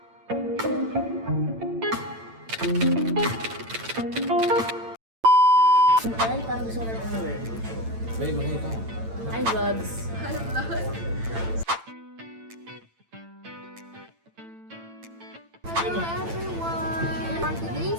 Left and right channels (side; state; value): left; late; 8.9 ms